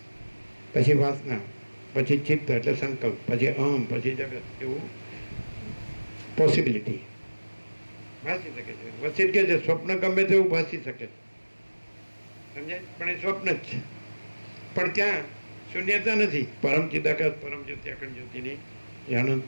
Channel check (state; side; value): inverted; both; correlation -1.00